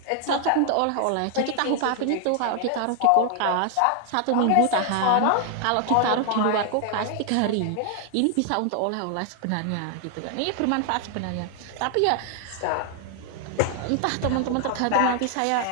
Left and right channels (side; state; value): both; different; correlation 0.00